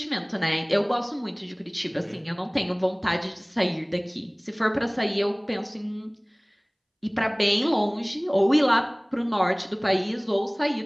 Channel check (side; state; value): both; identical; correlation 1.00